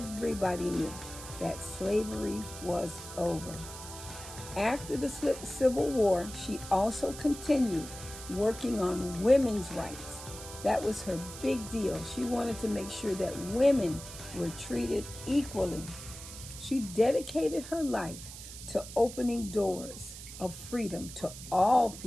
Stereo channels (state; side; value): noise; right; hiss, 12 dB below the sound